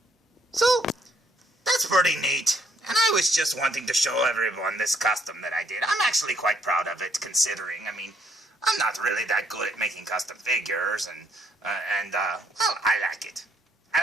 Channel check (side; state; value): both; normal; correlation 0.69